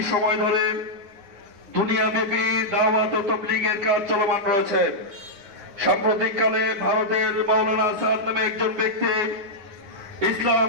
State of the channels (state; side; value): late; left; 9.6 ms